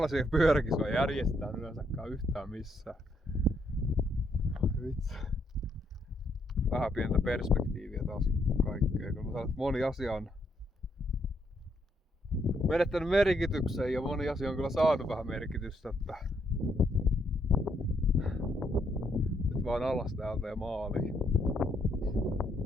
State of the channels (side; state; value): both; normal; correlation 0.74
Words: pyöräkisoja järjestetään yleensäkään yhtään missään. Vitsi. Vähän pientä perspektiiviä taas kaikkea, kun mä sanon, että moni asia on menettänyt merkityksen ja moni asia on kyllä saanut vähän merkitystä, että nyt vaan alas täältä ja maaliin.